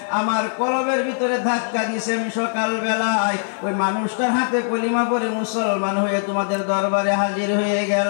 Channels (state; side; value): silent; right; digital silence